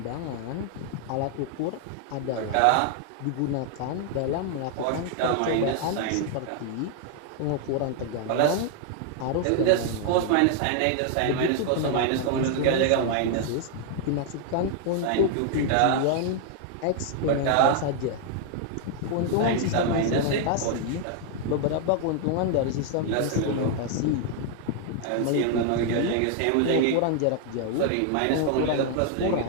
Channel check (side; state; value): both; different; correlation 0.00